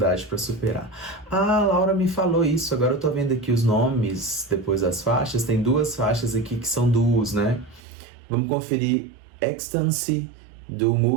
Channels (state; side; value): drops out; left; at 7.8 s